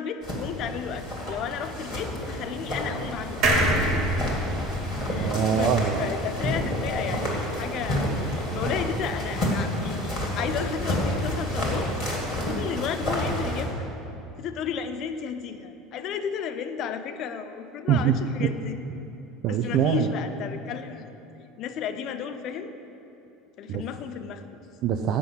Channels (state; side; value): normal; both; correlation 0.40